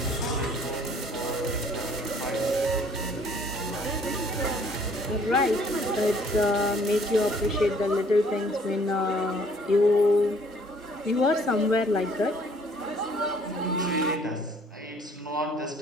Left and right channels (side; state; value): both; normal; correlation 0.59